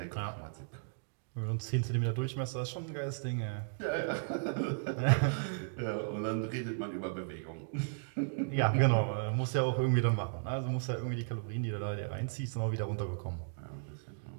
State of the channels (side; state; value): left; silent; digital silence